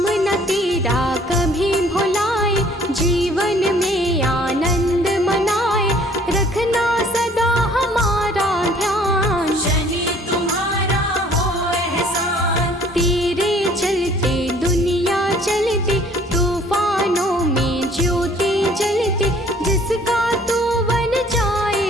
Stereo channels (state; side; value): normal; both; correlation 0.56